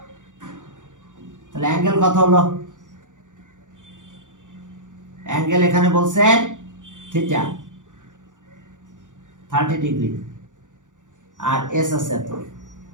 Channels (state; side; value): late; left; 0.87 ms